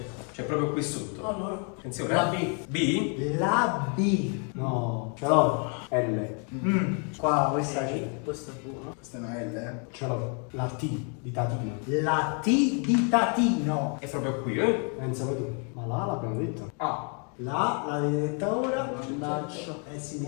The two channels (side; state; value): right; quieter; 39.3 dB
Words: proprio qui sotto. Allora. Attenzione. La B. B? La B. No, ce l'ho. L. Qua questa c'è. Questa è buona. Questa è una L, eh. Ce l'ho. La T di Tatina. La T di Tatino. È proprio qui, eh? Pensa poi tu. Ma là l'abbiamo detto. A. L'avete detta ora? Mannaggia. Sì, mi